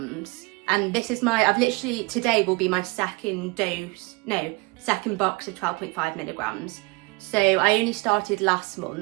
And this is today will be my second box of 12.5 milligrams. So I only started last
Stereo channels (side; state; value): left; quieter; 26.2 dB